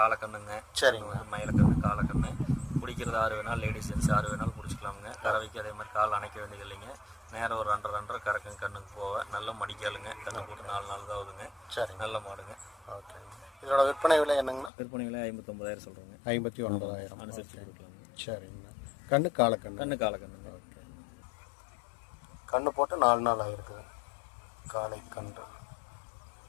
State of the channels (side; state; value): right; drops out; at 14.7 s